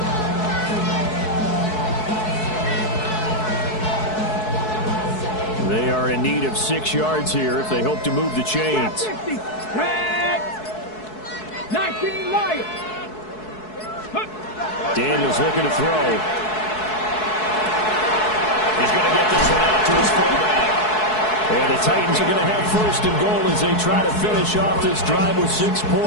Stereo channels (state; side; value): late; right; 4.7 ms